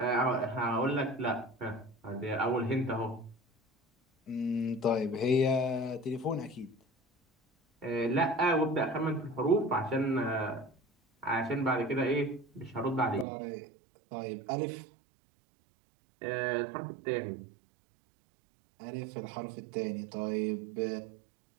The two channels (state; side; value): drops out; left; at 13.2 s